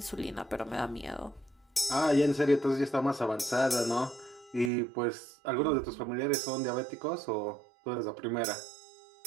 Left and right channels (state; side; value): drops out; left; at 4.7 s